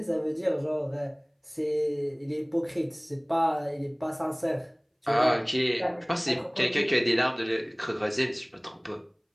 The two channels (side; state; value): both; identical; correlation 1.00